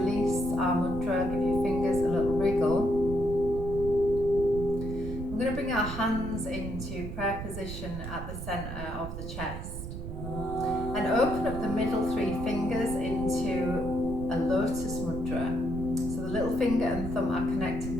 our mudra, give your fingers a little wriggle. We're going to bring our hands into prayer position at the center of the chest and open up the middle three fingers into a lotus mudra. So the little finger and thumb are connected,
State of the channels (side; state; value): right; noise; rumble, 7 dB below the sound